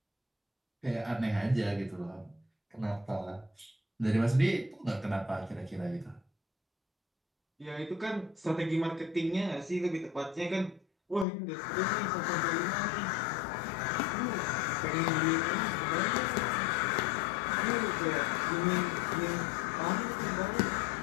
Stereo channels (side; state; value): right; drops out; at 11.2 s